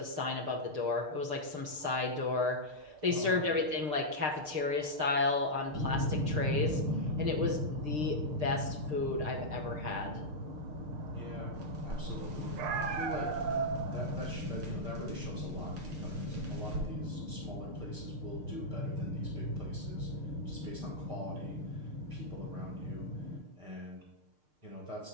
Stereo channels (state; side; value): late; left; 6.6 ms